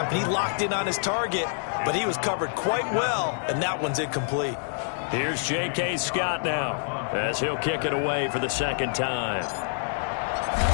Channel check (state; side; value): silent; right; 60 dB below the other